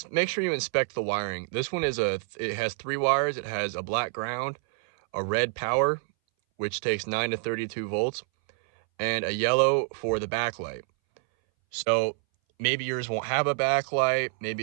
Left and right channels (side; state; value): left; silent; 60 dB below the other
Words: make sure you inspect the wiring. This one it has 3 wires. It has a black ground, a red power, which takes 9 to 32 volts, and a yellow for the backlight. So maybe yours won't have a backlight,